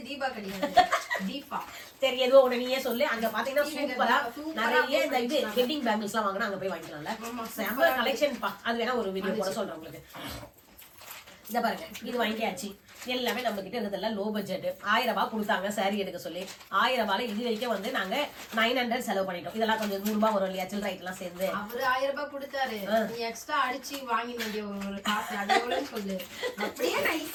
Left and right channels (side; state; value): both; identical; correlation 1.00